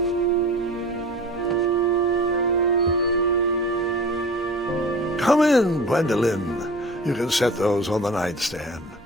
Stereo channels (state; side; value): normal; both; correlation 0.39